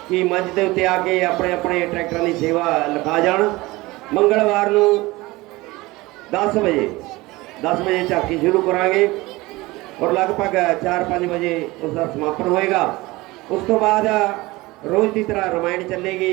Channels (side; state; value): left; quieter; 21.0 dB